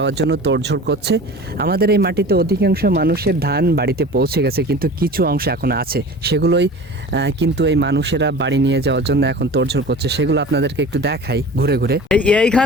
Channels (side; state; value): both; normal; correlation 0.38